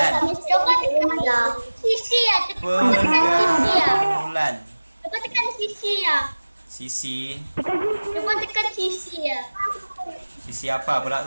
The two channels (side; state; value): both; inverted; correlation -1.00